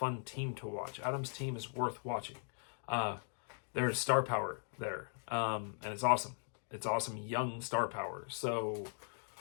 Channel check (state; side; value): silent; right; 52 dB below the other